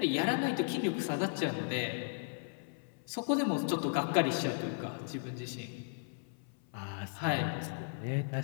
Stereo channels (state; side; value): silent; right; 54 dB below the other